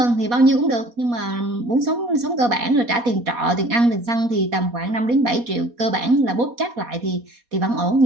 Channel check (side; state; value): left; late; 4.2 ms